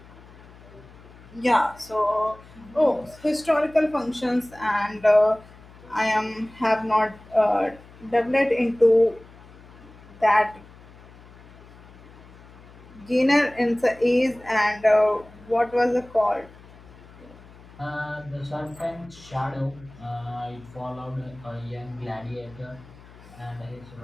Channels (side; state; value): left; noise; hum, 21 dB below the sound